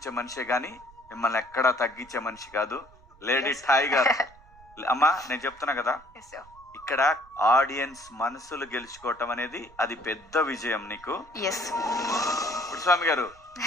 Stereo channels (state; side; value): noise; right; rumble, 25 dB below the sound